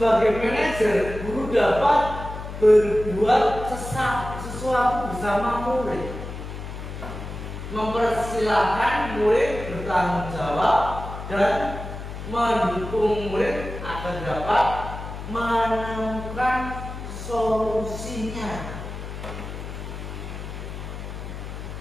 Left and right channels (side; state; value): left; noise; hum, 9 dB below the sound